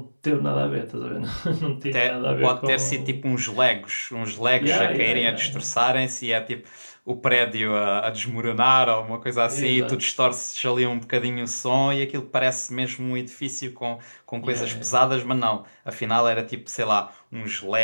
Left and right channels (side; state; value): both; inverted; correlation -1.00